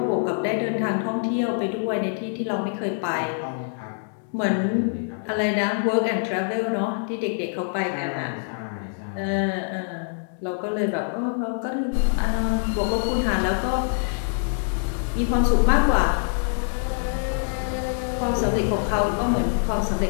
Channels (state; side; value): silent; right; 62 dB below the other